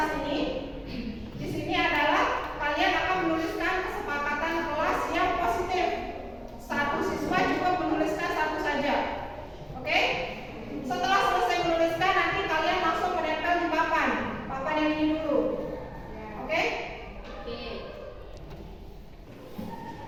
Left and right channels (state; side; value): identical; both; correlation 1.00